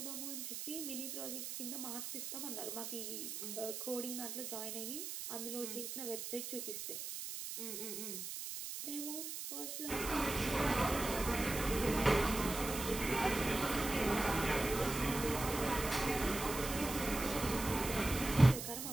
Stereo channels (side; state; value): right; noise; hiss, 6 dB below the sound